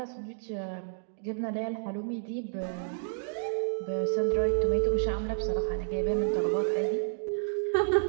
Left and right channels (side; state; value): left; silent; digital silence